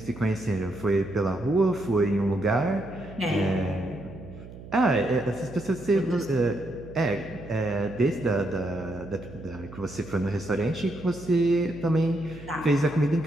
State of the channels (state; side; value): noise; right; hum, 15 dB below the sound